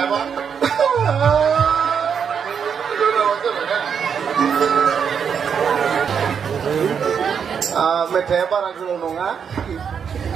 मेथाइया बारा गोलाव नङा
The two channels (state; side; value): quieter; left; 7.1 dB